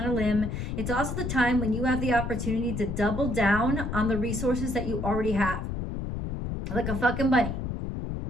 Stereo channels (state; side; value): noise; left; rumble, 4 dB below the sound